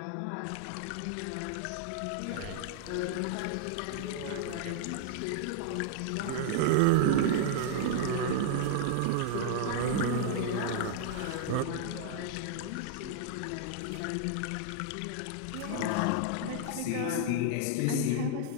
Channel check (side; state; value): both; different; correlation 0.00